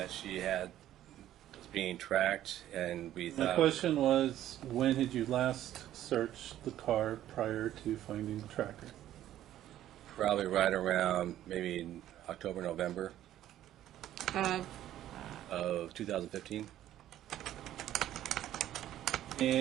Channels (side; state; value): left; quieter; 12.6 dB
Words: she was being tracked, and we My thought. question was, when had you last searched the car prior to finding the tracker? Probably right around maybe October, November of 2015.